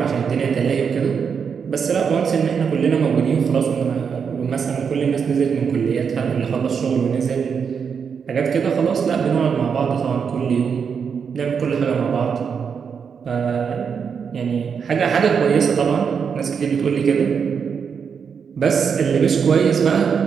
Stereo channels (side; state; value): left; quieter; 6.5 dB